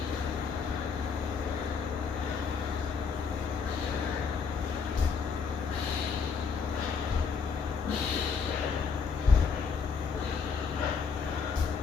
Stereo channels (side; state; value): right; quieter; 5.6 dB